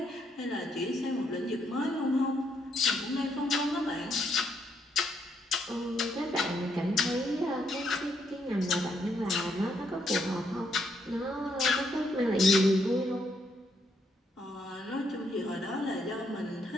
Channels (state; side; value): normal; both; correlation 0.74